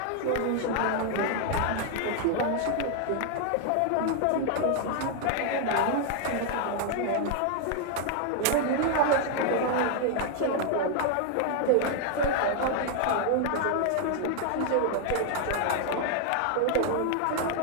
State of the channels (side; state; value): both; different; correlation 0.00